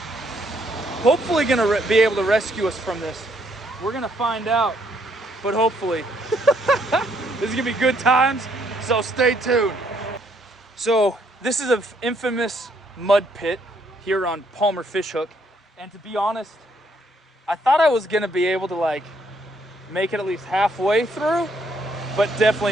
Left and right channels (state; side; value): normal; both; correlation 0.70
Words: hopefully gonna be able to rescue us from this. We're gonna find out, but hopefully. This is gonna be good times, so stay tuned. So this is an infamous mud pit here on Palmer Fishhook, and to be honest, I thought I was gonna be able to like make it at least halfway through, but definitely